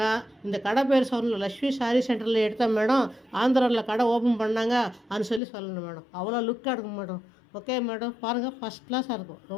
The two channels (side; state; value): right; drops out; at 5.4 s